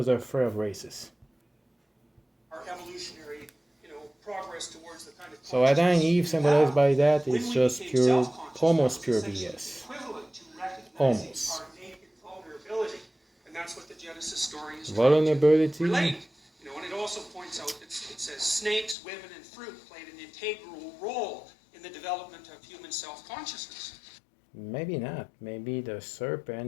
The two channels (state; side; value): drops out; right; at 18.9 s